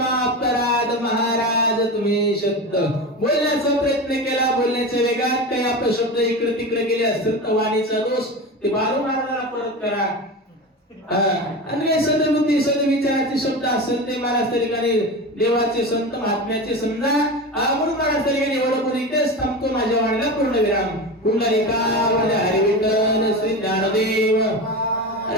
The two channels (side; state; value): both; normal; correlation 0.25